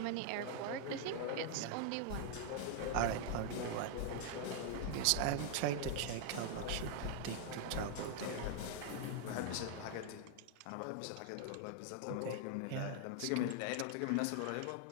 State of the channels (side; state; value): both; different; correlation 0.00